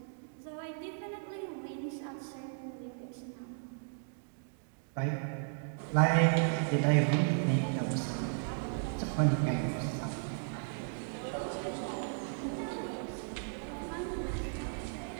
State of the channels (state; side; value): silent; left; digital silence